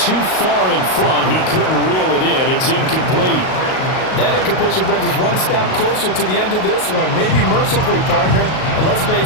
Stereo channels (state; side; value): late; right; 38 ms